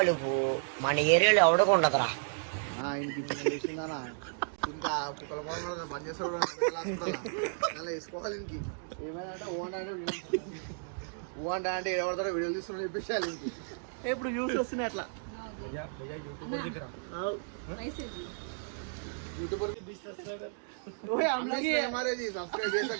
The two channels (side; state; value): left; silent; digital silence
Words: మన ఏరియాలో ఎవడకుండదురా. ఆయనకి చేసిందా ఇంకా కుక్కల బంద్ చేస్తాడు వేసుకోవాలి. ఇంకి ఏమైనా ఓన్ అంటే ఎవరితో వీడియోలు తీసుకుని చెప్పేసాలి. ఇంకి ఇప్పుడు యూస్ వస్తున్నాయి అట్లా यूट्यूबर के 20 सब्सक्राइबर ओए हम लोग हमारे जी सब्सक्राइब ऐसा